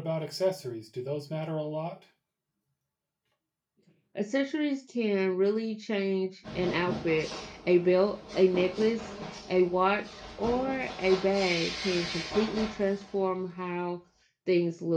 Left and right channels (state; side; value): identical; both; correlation 1.00